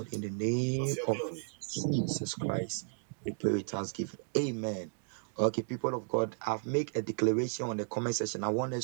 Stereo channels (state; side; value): silent; left; digital silence